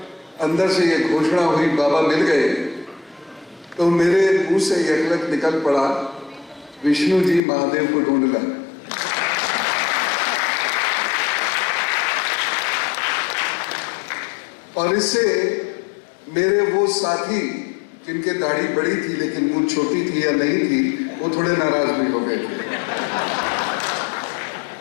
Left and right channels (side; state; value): right; drops out; at 7.4 s